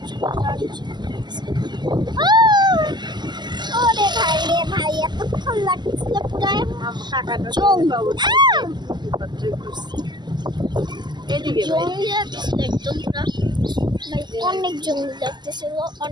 ওরে ভাই রে ভাই এতক্ষণ লাগছিল পুরো এদিকে জঙ্গলি লাগছিল একদম পুরো অনেক জঙ্গলি লাগতেছিল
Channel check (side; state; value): left; late; 0.21 ms